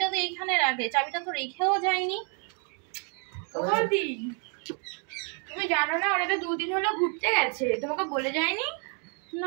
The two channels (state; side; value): quieter; left; 40.0 dB